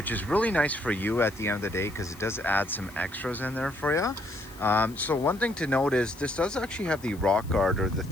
is really nice for you at the end of the day because it does add some extras in there for you. So one thing to note is this does actually have the rock guard, or the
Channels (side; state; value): left; noise; hiss, 22 dB below the sound